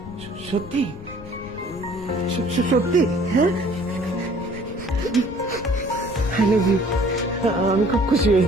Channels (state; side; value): noise; left; rumble, 15 dB below the sound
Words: সত্যি? সত্যি? হ্যাঁ, আই লাভ ইউ। আমি খুব খুশি